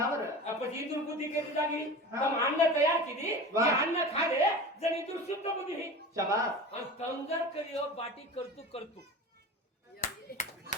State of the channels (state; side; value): normal; both; correlation 0.33